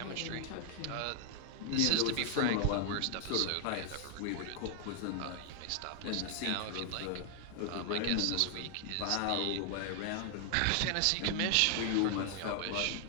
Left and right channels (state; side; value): different; both; correlation 0.00